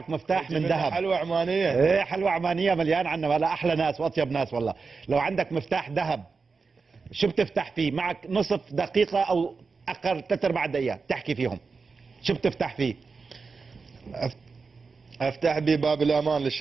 مفتاح من ذهب. حلوة عمانية. ايه حلوة عمانية مليان عنا، ولا احلى ناس واطيب ناس والله. لو عندك مفتاح ذهب شو بتفتح فيه؟ معك نصف دقيقة او اقل 3/4 دقيقة تحكي فيهم، شو بتفتح فيه؟ افتح بي باب الامان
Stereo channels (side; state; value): left; quieter; 4.7 dB